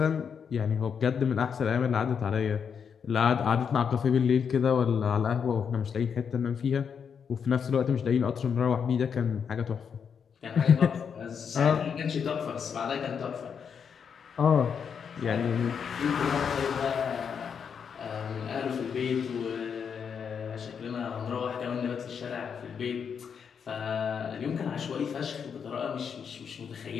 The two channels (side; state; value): right; quieter; 6.9 dB